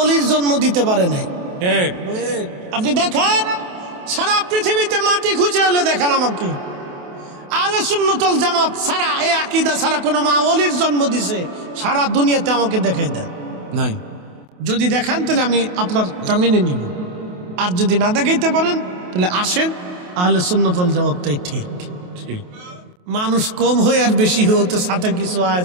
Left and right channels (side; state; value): left; late; 28 ms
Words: জন্ম দিতে পারে নাই। আপনি দেখেন, সারা পৃথিবীতে মাটি খুঁজে হলে দেখান আমাকে, আহলে সুন্নাত ওয়াল জামাত ছাড়া, এই আকীদা ছাড়া কোন মা ওলির জন্ম দিছে সারা দুনিয়াতে আমাকে দেখাই দেন নাই। যদি দেখান তাহলে আমি আপনারটা মেনে নিব, আর যদি না দেখাইতে পারেন তাহলে আসেন, আহলে সুন্নাত ওয়াল জামাতটাই ঠিক। মানুষ কম হয়ে আর বেশি হতে সাথে কিছু